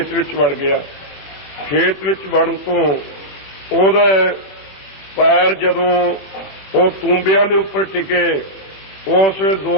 ਵਿੱਚ ਵੜ ਗਿਆ। ਖੇਤ ਵਿੱਚ ਵੜਨ ਤੋਂ ਉਹਦਾ ਪੈਰ ਜਦੋਂ ਉਹ ਤੂੰਬਿਆਂ ਦੇ ਉੱਪਰ ਟਿਕੇ, ਉਸ ਵੇਲੇ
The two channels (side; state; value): right; late; 21 ms